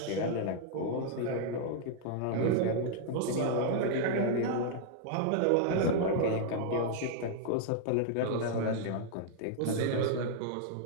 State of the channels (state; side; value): different; both; correlation -0.01